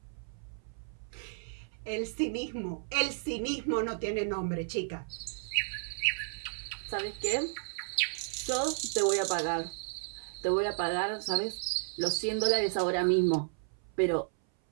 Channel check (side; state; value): left; silent; 56 dB below the other